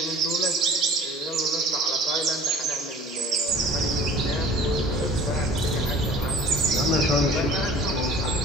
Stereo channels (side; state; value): both; normal; correlation 0.46